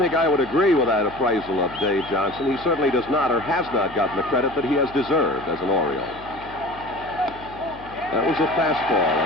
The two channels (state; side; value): noise; left; hum, 19 dB below the sound